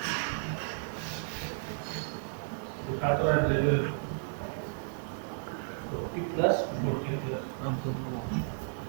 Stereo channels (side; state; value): left; silent; digital silence